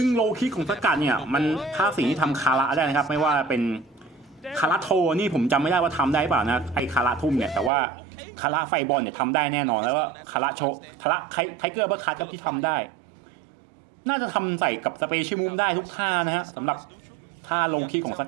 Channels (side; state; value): left; drops out; at 7.7 s